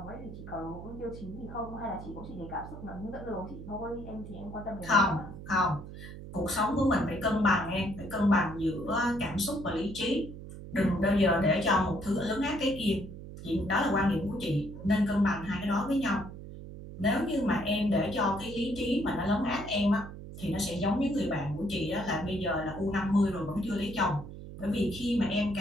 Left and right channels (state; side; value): noise; right; hum, 12 dB below the sound